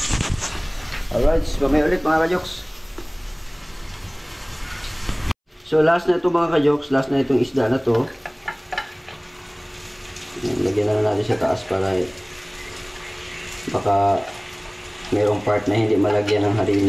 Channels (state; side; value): identical; both; correlation 1.00